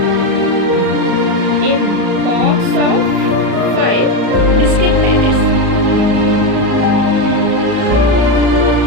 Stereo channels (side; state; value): left; late; 34 ms